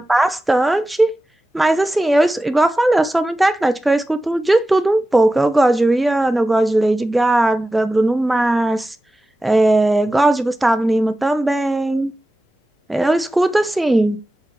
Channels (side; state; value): both; normal; correlation 0.95